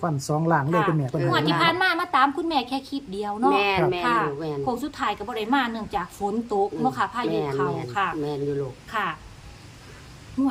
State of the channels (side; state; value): both; identical; correlation 1.00